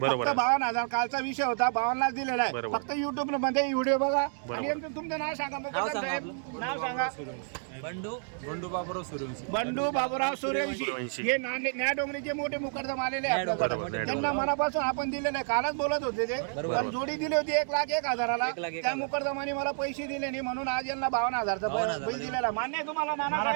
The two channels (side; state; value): left; silent; 58 dB below the other